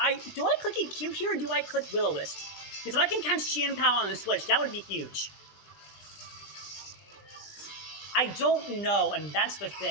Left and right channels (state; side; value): late; right; 20 ms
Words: Do I click EQ here or do I click Will-O-Wisp? Because if I can catch Chien-Pao on the switch, that would be huge. I don't know, and that's the